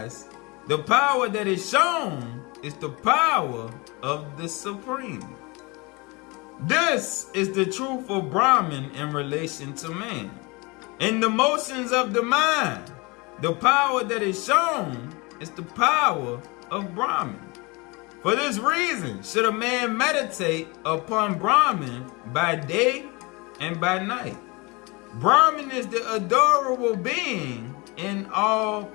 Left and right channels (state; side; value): quieter; right; 26.4 dB